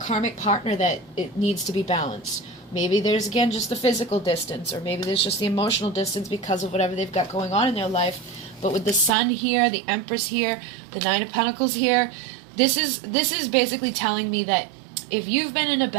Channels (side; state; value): left; drops out; at 9.1 s